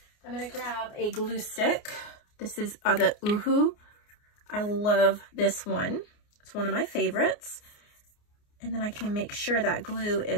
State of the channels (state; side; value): late; right; 29 ms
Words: I'm going to grab a glue stick. This is the Uhu. I love this one. It's one of my favorites. And then I can make sure that glue